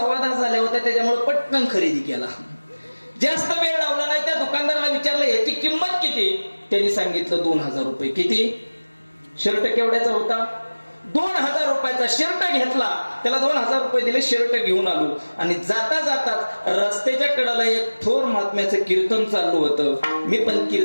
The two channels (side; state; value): both; inverted; correlation -1.00